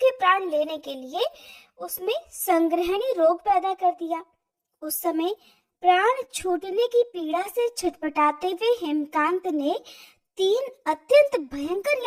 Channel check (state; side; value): identical; both; correlation 1.00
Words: प्राण लेने के लिए उसमें संग्रहणी रोग पैदा कर दिया। उस समय प्राण छूटने की पीड़ा से छटपटाते हुए हेमकांत ने 3 अत्यंत भयंकर